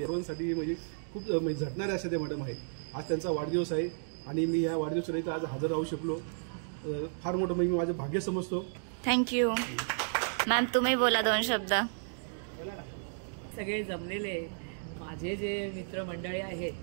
सर्वांसाठी म्हणजे खूप झटणारे अशा ते मॅडम आहेत. आज त्यांचा वाढदिवस आहे आणि मी या वाढदिवसाला इथं आज हजर राहू शकलो, फार मोठं म्हणजे मी माझं भाग्य समजतो. थँक्यू. मॅम तुम्ही बोला 2 शब्द. सगळे जमलेले माझे जे मित्रमंडळी आहेत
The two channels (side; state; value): left; silent; digital silence